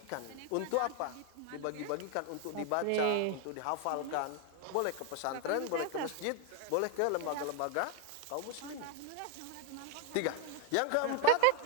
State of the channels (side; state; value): both; different; correlation 0.01